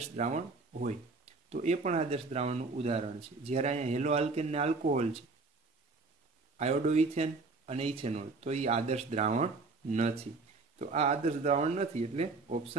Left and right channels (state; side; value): quieter; left; 3.9 dB